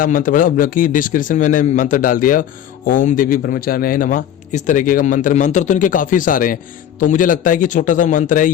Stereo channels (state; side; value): quieter; right; 10.3 dB